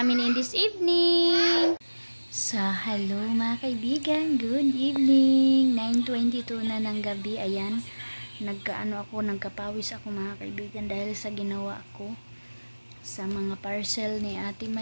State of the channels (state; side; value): inverted; both; correlation -1.00